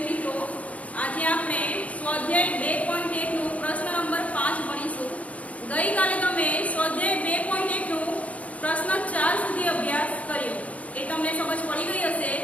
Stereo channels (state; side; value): late; right; 0.067 ms